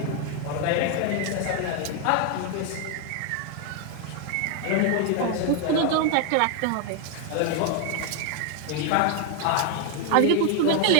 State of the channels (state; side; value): different; both; correlation 0.01